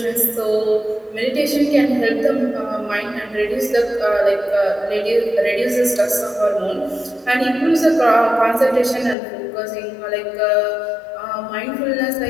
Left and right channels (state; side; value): drops out; right; at 9.2 s